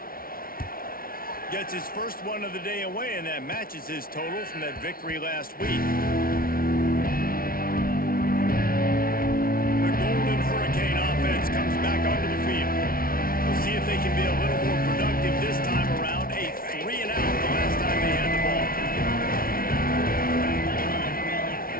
Gets his first one of the day away, and that matches his total from that victory last week. The Golden Hurricane offense comes back onto the field. We'll see if they can be a little more productive this time around. A 3 and out the last time they had the ball.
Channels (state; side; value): late; right; 0.43 ms